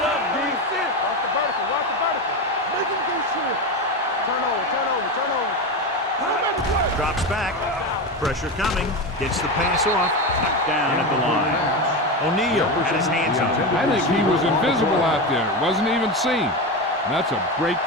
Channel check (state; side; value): normal; both; correlation 0.18